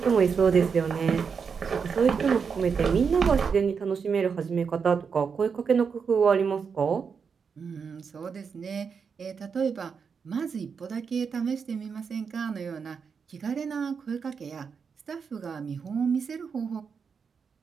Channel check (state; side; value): quieter; left; 6.0 dB